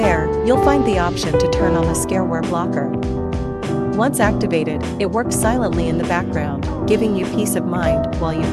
you'll find the option to turn on the Scareware blocker. Once activated, it works silently in the background, giving you peace of mind while you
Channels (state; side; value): identical; both; correlation 1.00